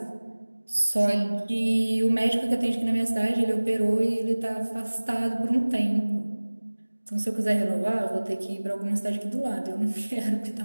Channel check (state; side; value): inverted; both; correlation -1.00